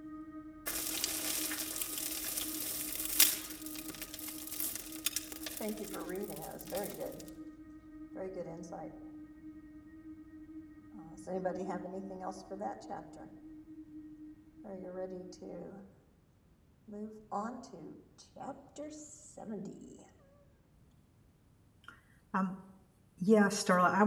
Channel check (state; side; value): identical; both; correlation 1.00